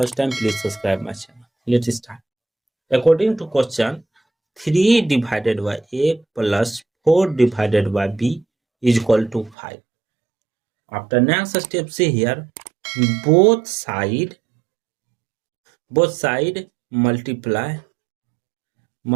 time, please subscribe my channel. Let's start. According to question, 3 divided by a plus 4 divided by b is equal to 5. After next step, see here, both side multiply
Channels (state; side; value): drops out; left; at 9.6 s